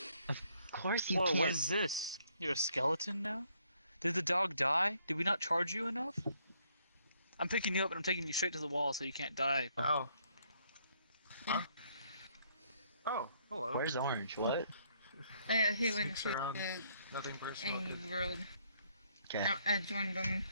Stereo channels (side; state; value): both; inverted; correlation -0.69